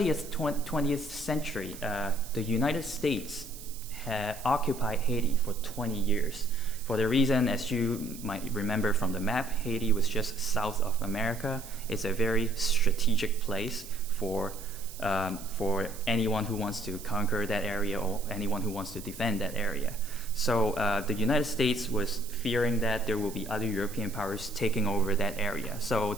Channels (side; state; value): right; noise; hiss, 15 dB below the sound